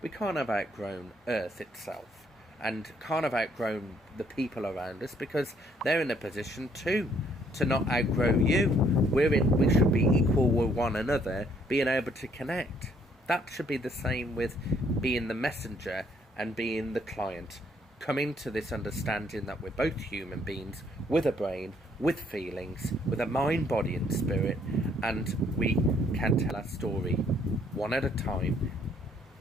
We can't have outgrown Earth itself. And can't have outgrown the people around us, because they're in a position too to not outgrow you. We should be equal with one another, being able to connect. That should be the same with being the messenger and being the client. Coming to this understanding that we're both human beings with a brain, with feelings, with a mind, body and spirit, and we can tell our story one at a time,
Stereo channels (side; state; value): both; normal; correlation 0.66